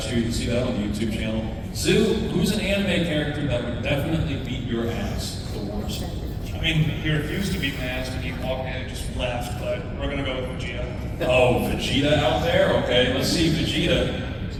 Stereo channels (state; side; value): identical; both; correlation 1.00